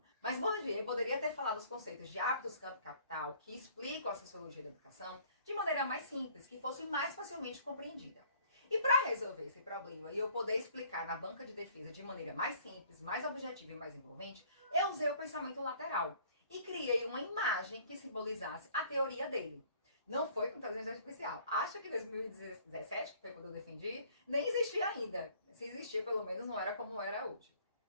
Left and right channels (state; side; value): inverted; both; correlation -0.57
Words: Mas Bourdieu poderia ter falado os conceitos de hábitos, campo e capital, que explicam a sociologia da educação, de maneira mais simples, que fosse mais facilmente compreendida. E para resolver esse problema e eu poder explicar na banca de defesa de maneira mais simples, mais objetiva e mais envolvente, eu usei o pensamento lateral e criei uma imagem que simbolizasse a teoria dele. Não foi com inteligência artificial. Acho que em 2017, que foi quando eu defendi, nem existia ainda. Se existia, pelo menos não era como era hoje.